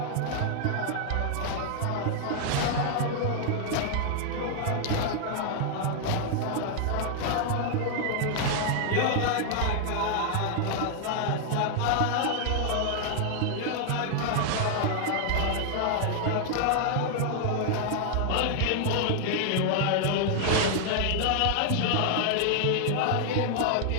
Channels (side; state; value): both; different; correlation 0.00